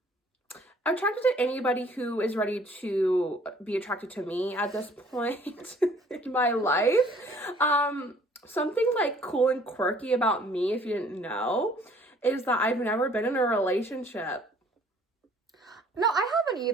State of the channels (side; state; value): both; normal; correlation 0.57